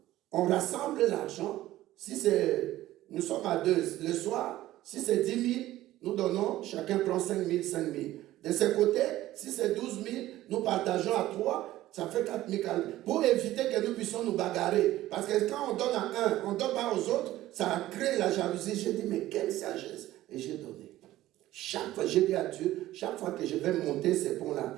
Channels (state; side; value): quieter; left; 15.2 dB